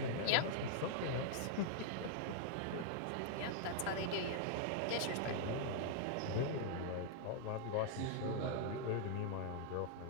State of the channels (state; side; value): different; both; correlation -0.01